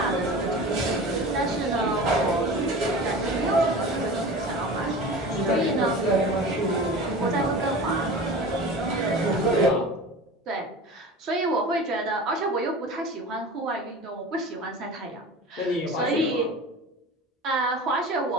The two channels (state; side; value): normal; both; correlation 0.35